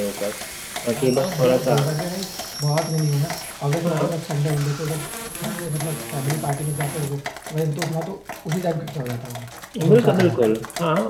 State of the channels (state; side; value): identical; both; correlation 1.00